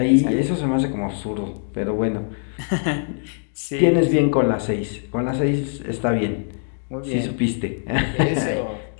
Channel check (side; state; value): right; silent; 64 dB below the other